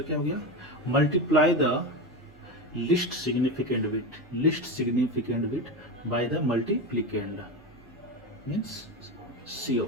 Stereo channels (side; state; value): both; normal; correlation 0.19